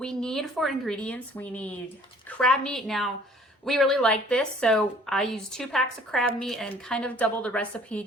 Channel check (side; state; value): both; normal; correlation 0.55